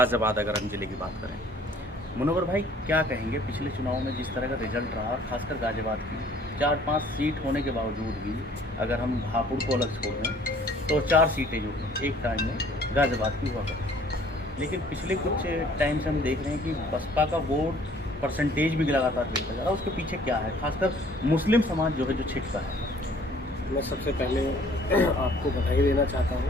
अगर हम ज़िले की बात करें। मुनव्वर भाई क्या कहेंगे, पिछले चुनाव में जिस तरह का रिजल्ट रहा, खासकर गाज़ियाबाद की 4-5 सीट होने के बावजूद भी अगर हम हापुड़ को अलग छोड़ दें तो 4 सीटें जो एक टाइम में गाज़ियाबाद की हुआ करती। लेकिन पिछले कुछ टाइम से हम देख रहे हैं कि बसपा का वोट परसेंटेज भी लगातार गिरता जा रहा है। उसके पीछे क्या है, खासकर मुस्लिम समाज जो है जो छिपता है। मैं सबसे पहले आपको बधाई देना चाहता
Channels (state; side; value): normal; both; correlation 0.56